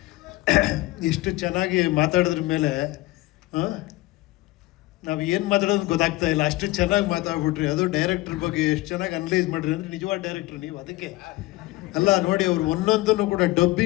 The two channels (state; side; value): quieter; right; 19.4 dB